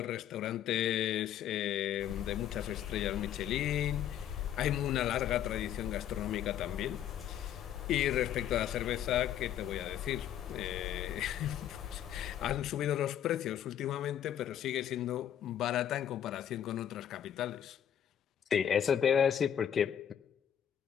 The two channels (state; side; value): quieter; right; 10.1 dB